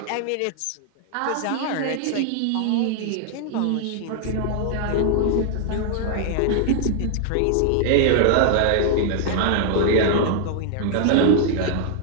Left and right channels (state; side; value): different; both; correlation 0.00